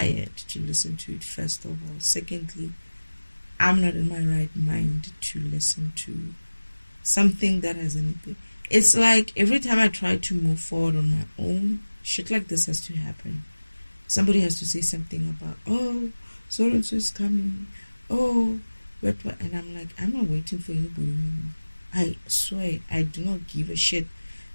to listen to it, first of all. Secondly, I'm not in my right mind to listen to something that has anything. It's like every time I try to move forward on my own, shit like this has to happen. Somebody has to say something about, oh, so and so is coming. Oh, what? And I'm like, I'm not waiting for anybody anymore. I swear, I do not give a shit.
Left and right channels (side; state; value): both; inverted; correlation -1.00